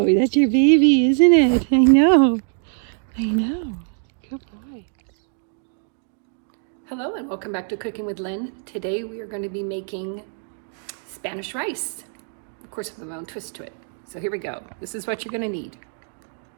that's your baby, isn't it? I know. Good boy. Hello and welcome back to Cooking with Lynn. Today we are going to be making Spanish rice. Of course, with my own twist to it. So here we go. This is what you're going to need.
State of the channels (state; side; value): silent; left; 63 dB below the other